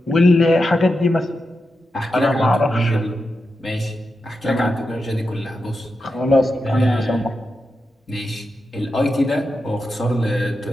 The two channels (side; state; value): both; normal; correlation 0.88